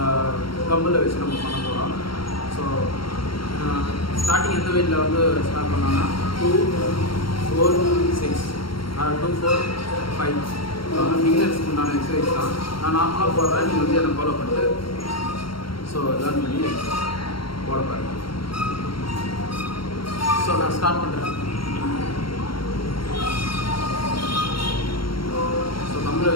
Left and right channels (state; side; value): late; right; 0.73 ms